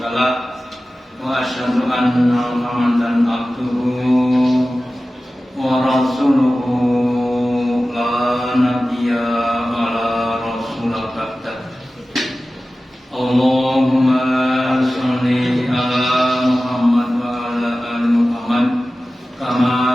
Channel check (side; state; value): both; normal; correlation 0.96